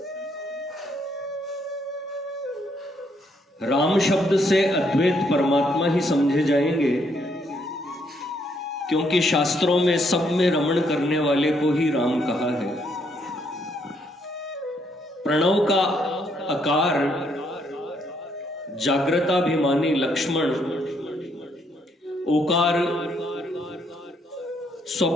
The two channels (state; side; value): normal; both; correlation 0.72